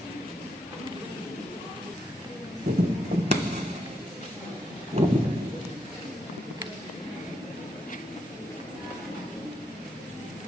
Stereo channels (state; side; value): normal; both; correlation 0.80